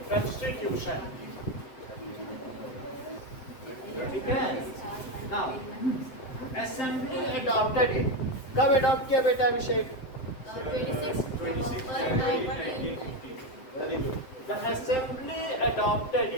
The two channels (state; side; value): late; right; 7.8 ms